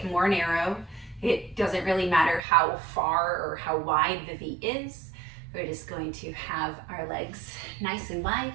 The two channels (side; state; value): left; drops out; at 2.4 s